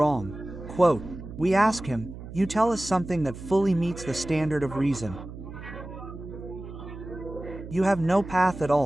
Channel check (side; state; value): right; noise; hum, 12 dB below the sound